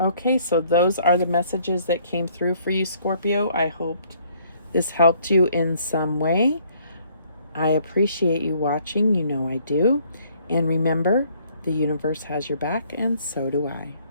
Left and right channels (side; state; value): both; inverted; correlation -0.63